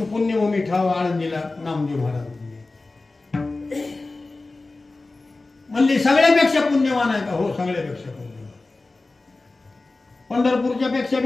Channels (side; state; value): right; quieter; 3.3 dB